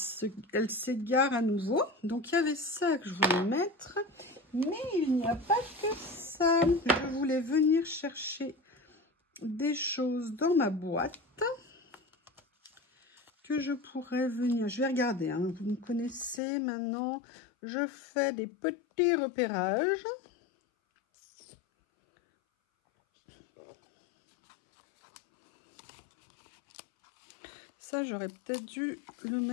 s'égare à nouveau. Donc il y avait ça que je voulais mettre, mais il n'y a pas que ça. Je voulais venir chercher des choses dans ma boîte que je pourrais venir. Je vais regarder, hein. Vous me connaissez maintenant, je fais des petits repérages. Ça, j'aurais peut-être dû le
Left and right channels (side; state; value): right; drops out; at 16.4 s